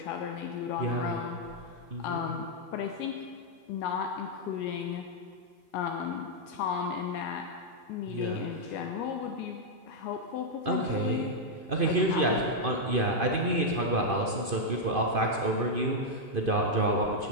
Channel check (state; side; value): late; left; 2.5 ms